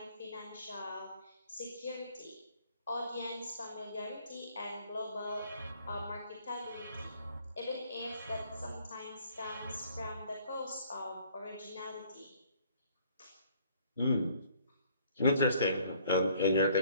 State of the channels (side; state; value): both; inverted; correlation -0.59